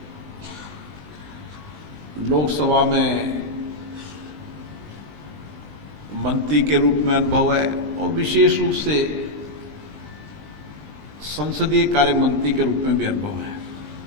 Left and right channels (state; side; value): late; left; 20 ms